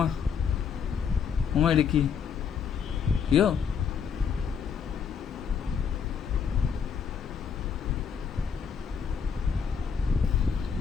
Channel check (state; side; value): quieter; right; 6.8 dB